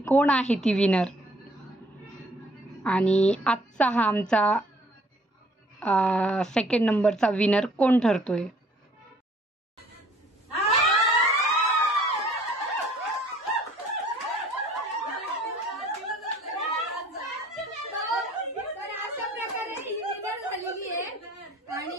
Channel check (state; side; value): normal; both; correlation 0.58